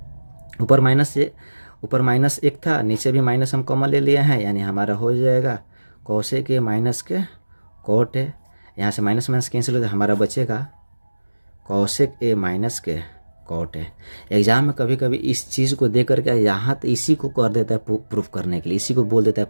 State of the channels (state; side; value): inverted; both; correlation -1.00